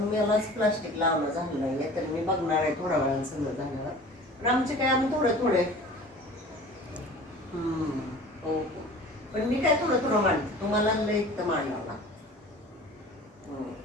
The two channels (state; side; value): normal; both; correlation 0.43